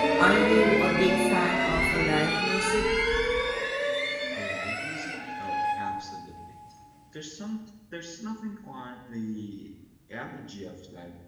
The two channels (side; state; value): both; identical; correlation 1.00